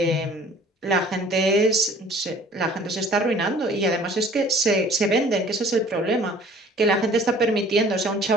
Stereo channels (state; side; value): normal; both; correlation 0.50